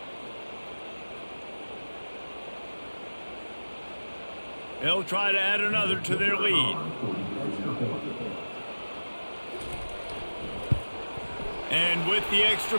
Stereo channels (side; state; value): both; inverted; correlation -1.00